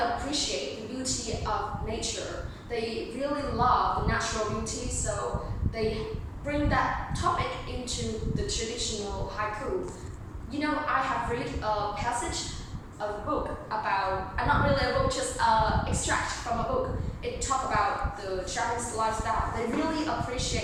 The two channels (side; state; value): both; identical; correlation 1.00